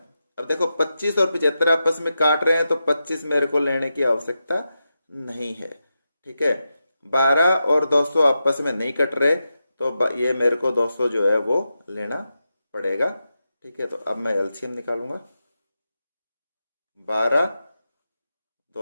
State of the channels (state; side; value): inverted; both; correlation -0.89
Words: अब देखो 25 और 75 आपस में काट रहे हैं तो 25 मेरे को लेने की आवश्यकता नहीं है, ठीक है। 12 और 200 आपस में नहीं कट रहे तो ये मेरे को 200 जो है वो लेना पड़ेगा, ठीक है। तो अब मैं एलसीएम निकालूंगा। 12,